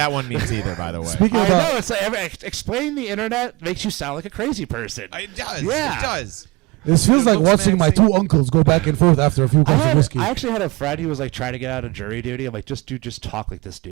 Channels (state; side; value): quieter; left; 24.2 dB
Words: one means either, by the way. I know. It's like explaining the internet makes you sound like a crazy person. It does. Yeah. It does. This feels like watching my two uncles go back and forth after a few glasses of whiskey. I actually had a friend who was like trying to get out of jury duty. I'm like, just talk like this